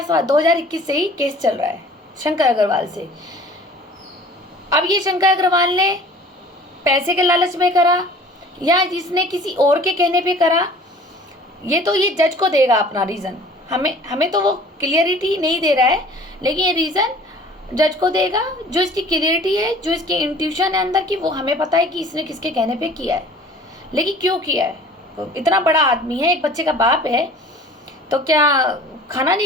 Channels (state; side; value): normal; both; correlation 0.48